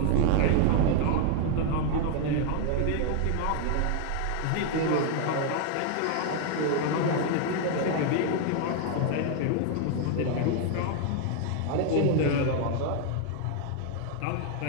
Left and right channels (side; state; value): both; different; correlation 0.00